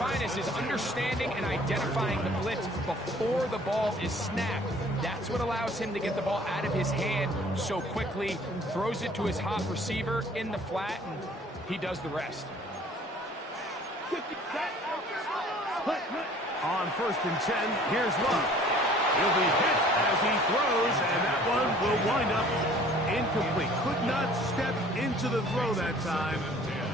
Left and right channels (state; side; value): normal; both; correlation 0.52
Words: is understanding and identifying the blitz before the ball is snapped. That's what allows him to get the ball out of his hand so quickly, throws it to his hot receiver in the flat, and he does the rest. On 1st and 10, here's Love. He'll be hit as he throws, and that one will wind up incomplete. Could not step into the throw that time.